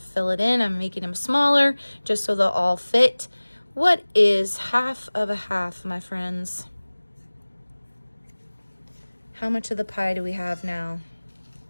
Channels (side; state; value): both; inverted; correlation -1.00